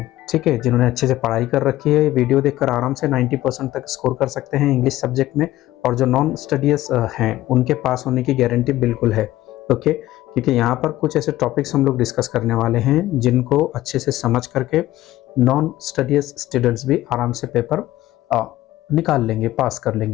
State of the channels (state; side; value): quieter; right; 15.5 dB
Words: ठीक है, जिन्होंने अच्छे से पढ़ाई कर रखी है, वीडियो देखकर आराम से 90% तक स्कोर कर सकते हैं इंग्लिश सब्जेक्ट में। और जो नॉन स्टडीज हैं उनके पास होने की गारंटी बिल्कुल है। ओके, क्योंकि यहाँ पर कुछ ऐसे टॉपिक्स हम लोग डिस्कस करने वाले हैं जिनको अच्छे से समझ करके नॉन स्टडीज स्टूडेंट्स भी आराम से पेपर निकाल लेंगे, पास कर